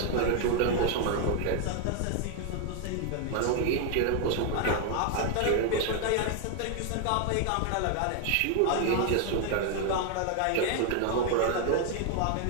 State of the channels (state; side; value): different; both; correlation 0.00